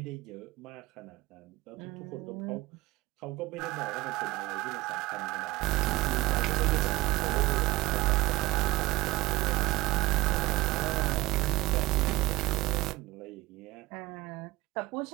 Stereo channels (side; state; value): left; quieter; 19.3 dB